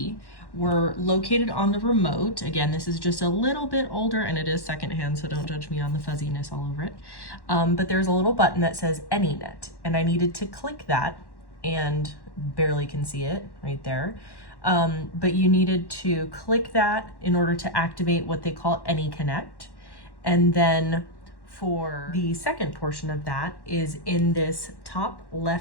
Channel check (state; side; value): late; right; 1.1 ms